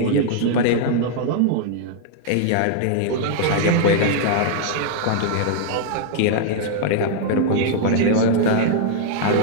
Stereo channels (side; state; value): both; different; correlation -0.01